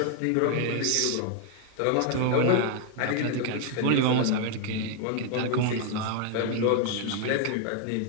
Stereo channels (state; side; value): different; both; correlation 0.00